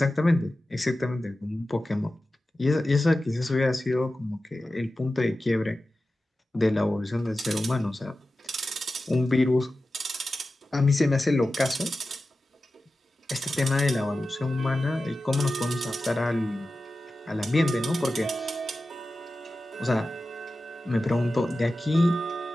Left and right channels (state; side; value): normal; both; correlation 0.94